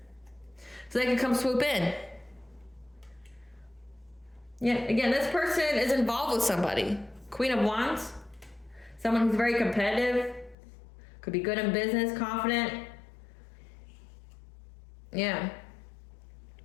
so they can come swoop in. Yeah, again, this person is involved with somebody. Queen of Wands. Someone who's very competitive. Could be good in business, confident. Yeah.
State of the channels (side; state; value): right; drops out; at 10.6 s